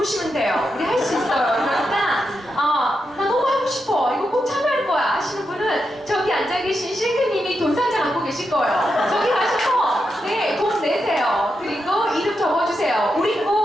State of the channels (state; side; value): normal; both; correlation 0.86